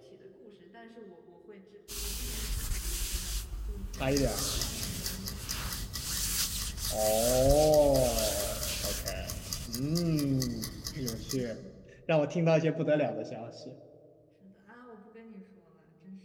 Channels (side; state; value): both; identical; correlation 1.00